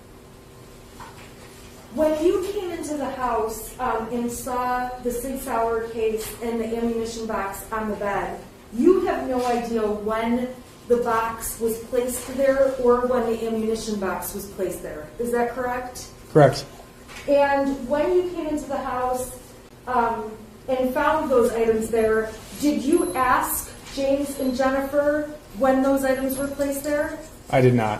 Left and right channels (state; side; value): identical; both; correlation 1.00